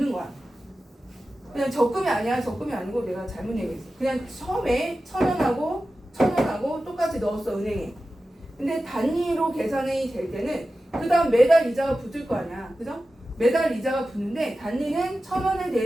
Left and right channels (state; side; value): normal; both; correlation 0.94